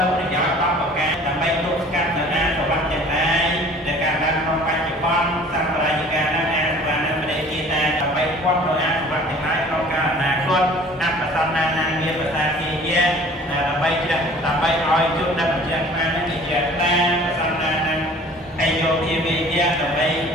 ៅប្រយោជន៍10ប្រការដើម្បីទប់ស្កាត់នៅអាសវៈទាំងឡាយដែលកើតឡើងក្នុងបច្ចុប្បន្នសម្រាប់រាជការនឹងអាសវៈនឹងប្រតិជាតែដើម្បីគាត់នៅអាសវៈទាំងឡាយក្នុងកាលអនាគតអបសន្នានាមានភាសាជាយាដើម្បីឲ្យជួបដល់បញ្ជាក់ថានឹងជាតាប្រសន្នានឹងហើយយកជាវិទ្យាដើម្បី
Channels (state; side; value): normal; both; correlation 0.49